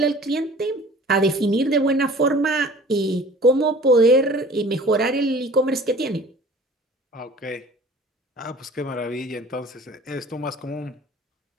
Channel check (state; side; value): normal; both; correlation 0.46